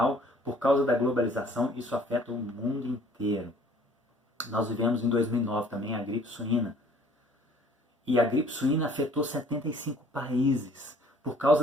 por causa da globalização, isso afeta o mundo inteiro. Nós vivemos em 2009 também a gripe suína. E a gripe suína afetou 75 países, por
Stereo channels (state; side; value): normal; both; correlation 0.55